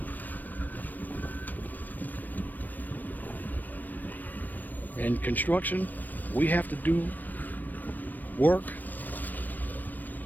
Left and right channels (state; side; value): late; right; 0.088 ms